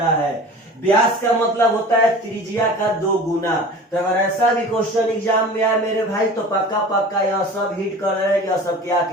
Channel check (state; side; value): normal; both; correlation 0.39